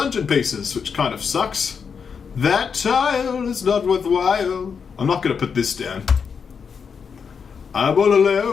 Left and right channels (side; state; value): right; quieter; 6.2 dB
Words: pieces, which kind of sucks. That tile is not worthwhile. I'm not going to put this down. I'm all